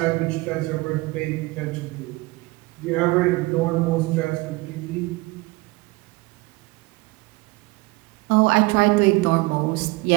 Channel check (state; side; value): quieter; left; 22.8 dB